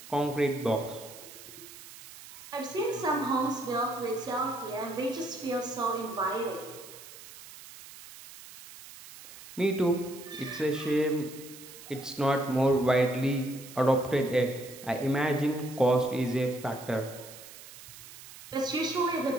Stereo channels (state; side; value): noise; right; hiss, 16 dB below the sound